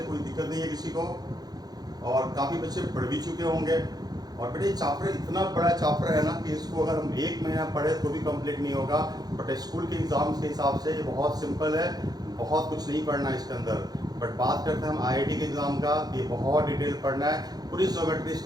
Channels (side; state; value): left; late; 0.19 ms